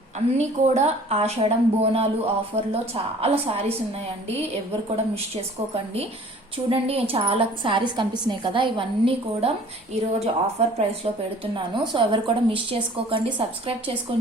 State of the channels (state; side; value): normal; both; correlation 0.50